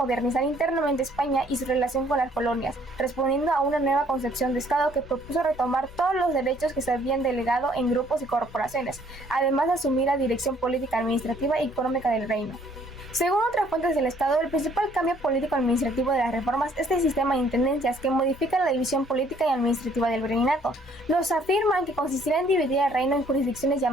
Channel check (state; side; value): normal; both; correlation 0.62